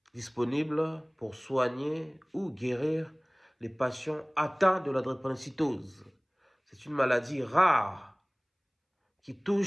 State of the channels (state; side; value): identical; both; correlation 1.00